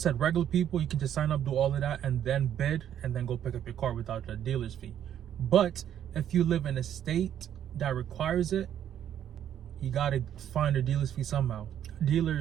regular people, you can just sign up, do all of that, and then bid, and then go pick up your car without the dealer's fee. But if you live in a state that requires it, you gotta find a dealer's fee somehow,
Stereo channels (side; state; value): left; quieter; 10.1 dB